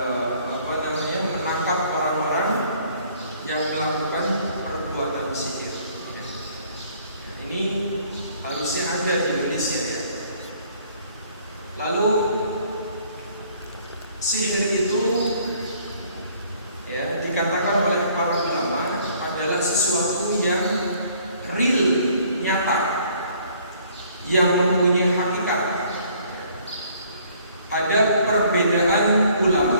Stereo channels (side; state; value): both; inverted; correlation -0.60